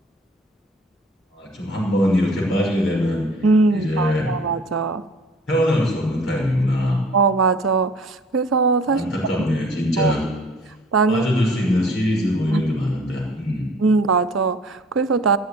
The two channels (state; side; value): normal; both; correlation 0.51